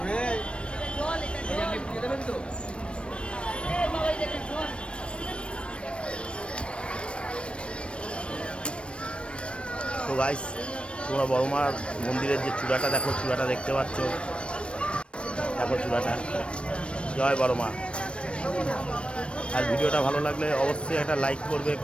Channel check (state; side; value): late; right; 0.059 ms